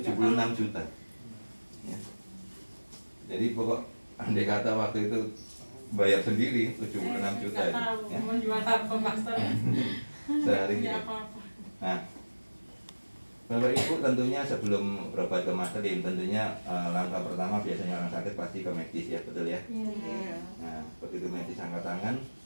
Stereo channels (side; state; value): both; inverted; correlation -1.00